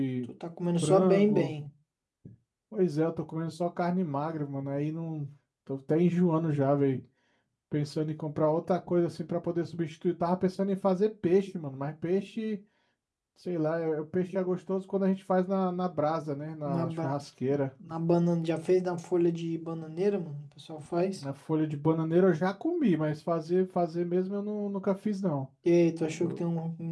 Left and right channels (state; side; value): identical; both; correlation 1.00